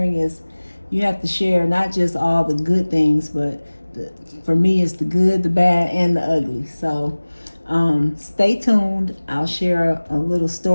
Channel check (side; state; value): both; inverted; correlation -1.00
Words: is you have to share not just all the good things, but for me, it's the good, the bad, and the ugly. So stay tuned. I'll share a little